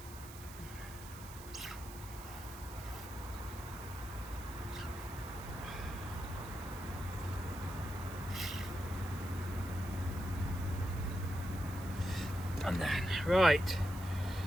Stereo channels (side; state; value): right; noise; hiss, 16 dB below the sound